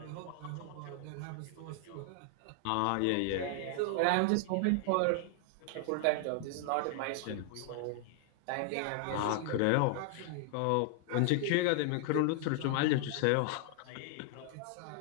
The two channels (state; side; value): different; both; correlation 0.00